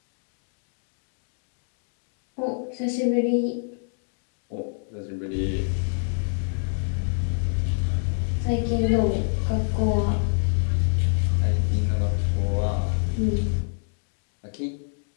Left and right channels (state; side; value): silent; right; digital silence